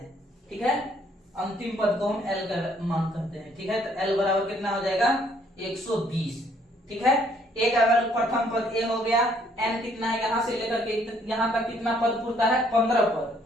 ठीक है, अंतिम पद को हम l का मान करते हैं। ठीक है, तो l बराबर कितना हो जाएगा, 120। ठीक है, a का वैल्यू प्रथम पद a हो गया, n कितना है, यहां से लेकर के यहां तक कितना पद पूरता है, 15 पद।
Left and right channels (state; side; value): normal; both; correlation 0.65